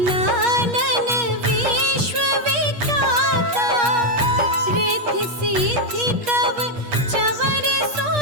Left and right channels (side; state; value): left; late; 8.4 ms